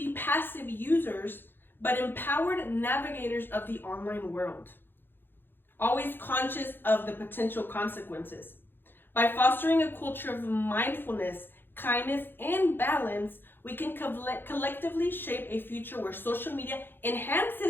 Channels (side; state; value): right; late; 0.10 ms